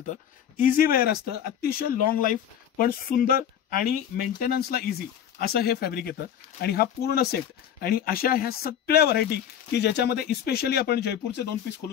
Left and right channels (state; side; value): quieter; right; 9.4 dB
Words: इझी वेअर असतं, अतिशय लॉंग लाईफ पण सुंदर आणि मेंटेनन्सला इझी असं हे फॅब्रिक येतं. आणि हा पूर्ण सेट आणि अशा ह्या सगळ्या व्हरायटी की ज्याच्यामध्ये स्पेशली आपण जयपूरचे 2 पीस